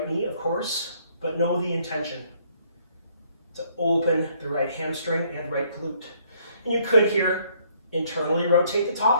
knee, of course, but know the intention to open the right hamstring and right glute. And you could here internally rotate the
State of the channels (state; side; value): inverted; both; correlation -0.66